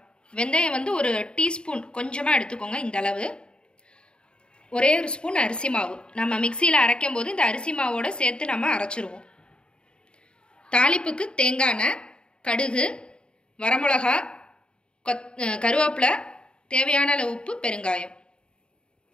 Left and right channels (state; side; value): late; right; 0.051 ms